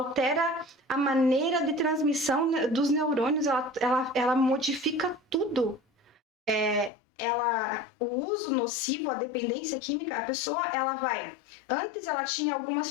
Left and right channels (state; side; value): drops out; right; at 6.9 s